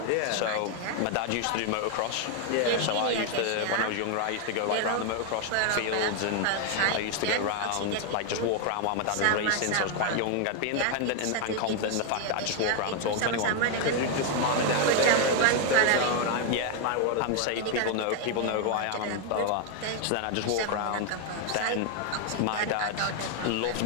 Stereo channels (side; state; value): both; different; correlation 0.01